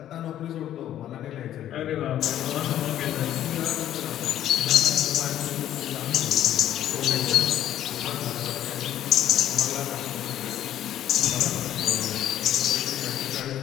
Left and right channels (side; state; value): right; quieter; 11.7 dB